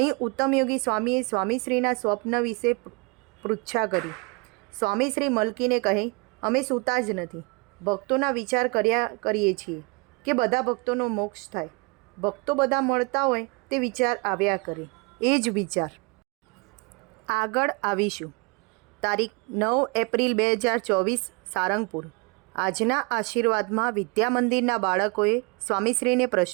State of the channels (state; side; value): quieter; left; 29.8 dB